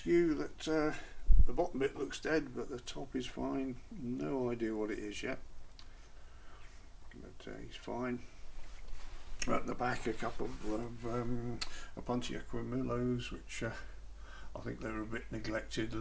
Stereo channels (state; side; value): identical; both; correlation 1.00